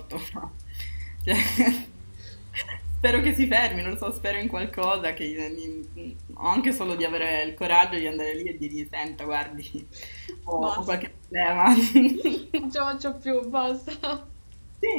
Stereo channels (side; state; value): both; inverted; correlation -1.00